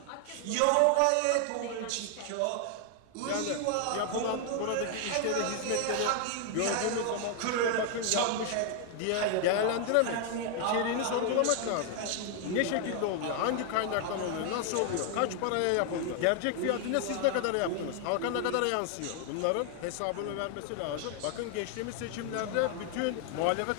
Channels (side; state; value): both; different; correlation 0.00